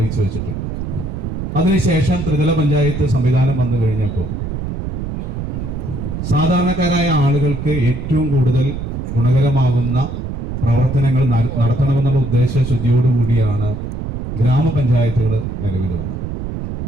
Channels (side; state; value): right; noise; rumble, 5 dB below the sound